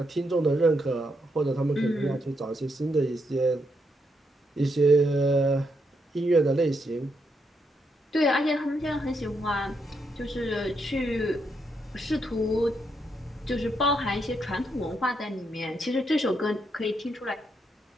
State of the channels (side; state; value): both; normal; correlation 0.79